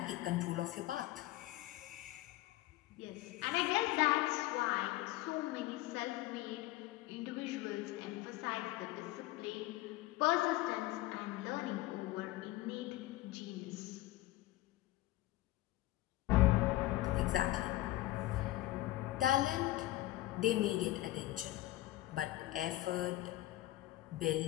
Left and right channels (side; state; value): right; quieter; 16.9 dB